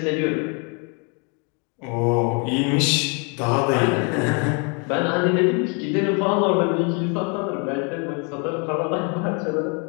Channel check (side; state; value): right; quieter; 35.4 dB